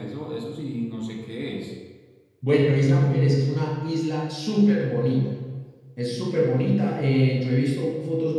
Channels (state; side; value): identical; both; correlation 1.00